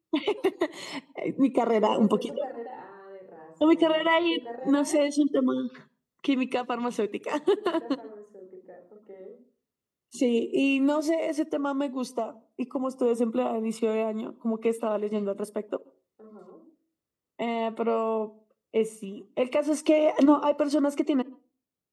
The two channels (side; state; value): both; identical; correlation 1.00